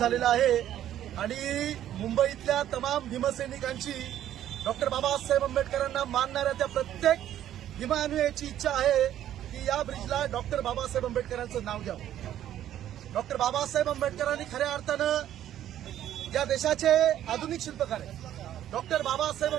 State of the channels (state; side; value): quieter; left; 11.7 dB